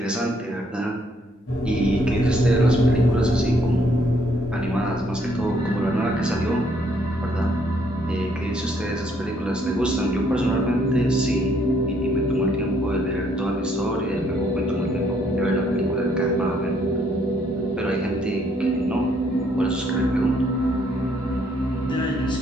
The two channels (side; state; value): both; normal; correlation 0.68